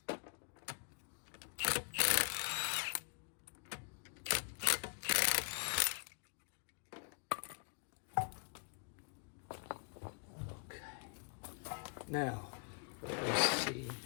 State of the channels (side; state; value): right; quieter; 36.1 dB